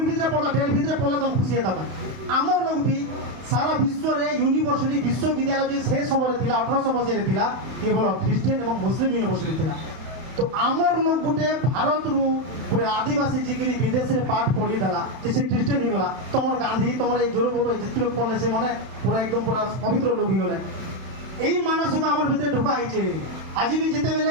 भितर पड़ता डेढ़ भितर पड़ला तुम खुशी होता आमर लोग भी सारा विश्व रे यूनिवर्सिटी विश्वविद्यालय जो से समय थिला 1800 मसीह थिला केवल ख्रिस्टियन एवं मुस्लिम यूनिवर्सिटी थिला तो आमर लोग गुटे भारत रु गुटे आदिवासी जिगिरी विदेश रे पाठ पढ़ी देला जैसे ख्रिस्टियन ही गला तमर गांधी तमर ए जोर बोलो जितने लोग पढ़ले से माने पूरा एकदम पूरा पवित्र लोग ही गले एई मानस को आमर भितर ढुका आइছে आज भी जेते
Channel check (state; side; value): late; left; 31 ms